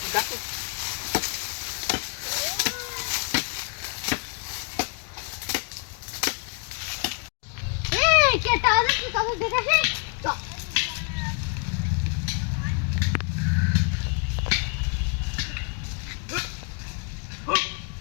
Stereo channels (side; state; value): right; quieter; 36.4 dB